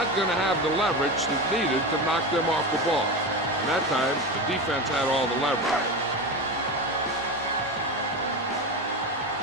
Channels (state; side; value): normal; both; correlation 0.22